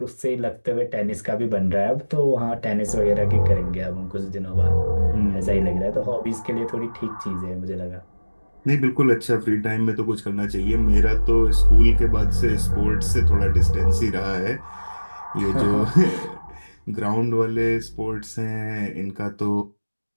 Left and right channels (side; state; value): both; inverted; correlation -1.00